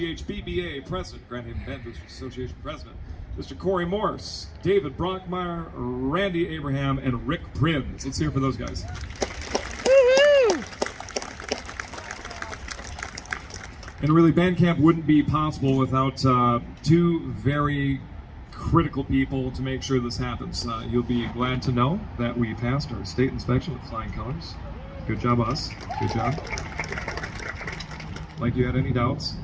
President, Grand Haven Band Boosters Association President, Mr. Corey Morse, David Brockmeyer, Randy Abraham, and Rick Prinz. Let's hear it for those guys. Woo-hoo! And really, band camp wouldn't be possible without 2 very critical people to make sure this happens. You'll be glad to know that we passed our state inspection with flying colors. Good job, us. Good job. Like you had any doubts.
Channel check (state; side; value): identical; both; correlation 1.00